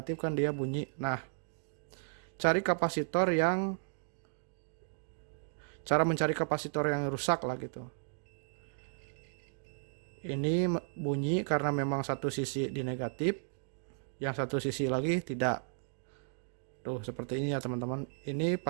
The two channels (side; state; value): left; silent; digital silence